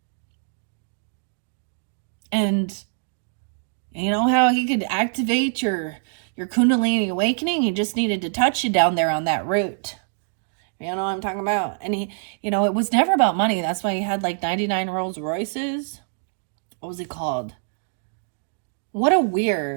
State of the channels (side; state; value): left; silent; digital silence